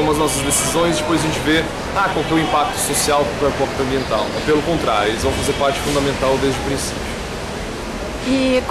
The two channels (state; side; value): identical; both; correlation 1.00